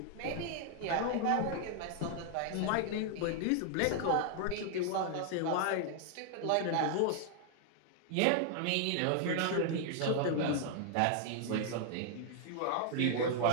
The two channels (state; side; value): different; both; correlation 0.00